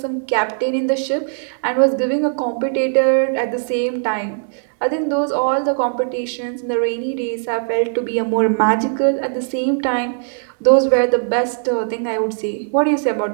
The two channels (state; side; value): silent; left; digital silence